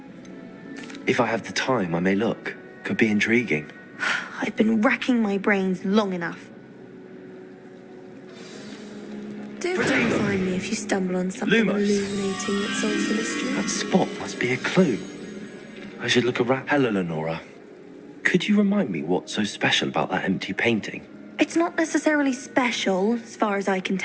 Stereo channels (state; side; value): identical; both; correlation 1.00